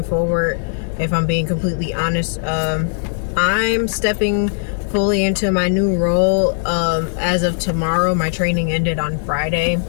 forward. If I'm being completely honest, I'm stepping fully into my new role as of tomorrow. My training ended on Friday,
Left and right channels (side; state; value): right; silent; digital silence